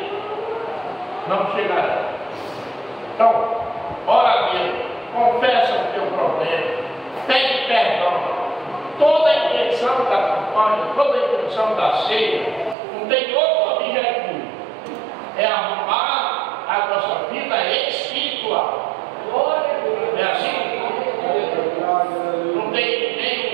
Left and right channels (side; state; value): left; drops out; at 12.8 s